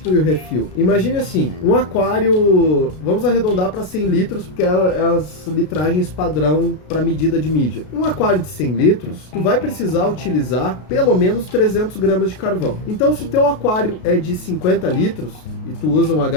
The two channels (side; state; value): right; late; 33 ms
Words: o refil? Imagine assim, um aquário, vamos arredondar para 100 litros, porque é as litragens padrão para medida de mídia. Um aquário de 100 litros, tu vai precisar utilizar pelo menos 300 gramas de carvão. Então, se o teu aquário é de 50 litros e tu usa um